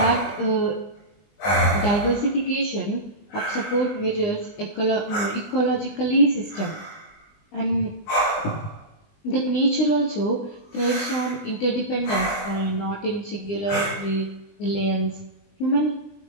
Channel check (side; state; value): right; late; 20 ms